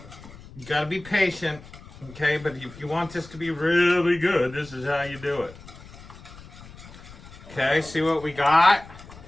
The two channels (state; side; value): noise; left; rumble, 18 dB below the sound